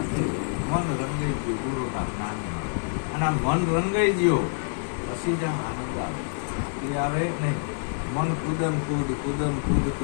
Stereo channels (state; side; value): silent; right; 55 dB below the other